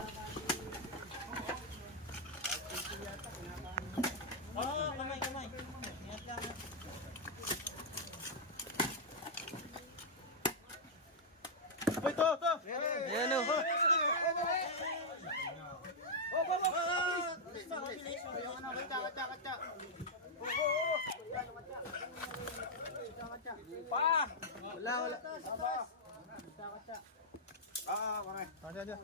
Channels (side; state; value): both; normal; correlation -0.05